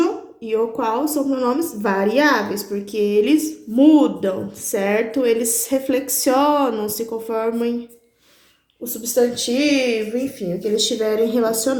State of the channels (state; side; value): identical; both; correlation 1.00